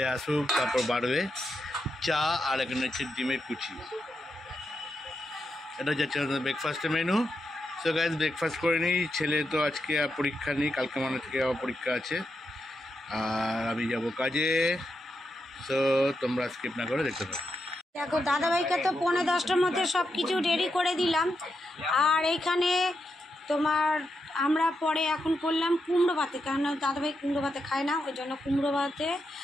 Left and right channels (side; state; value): both; normal; correlation 0.85